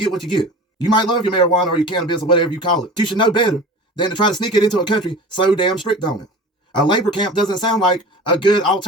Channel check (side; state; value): both; normal; correlation 0.37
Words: what you get. You might love your marijuana or your cannabis or whatever you call it. You should know better than to try to sneak it into a country so damn strict on it. A labor camp doesn't sound like a good